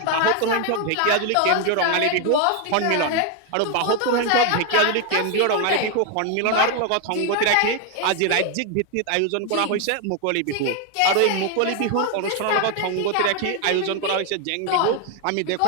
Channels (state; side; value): different; both; correlation 0.01